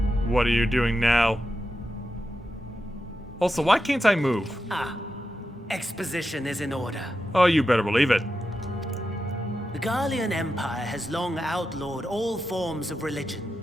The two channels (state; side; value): normal; both; correlation 0.89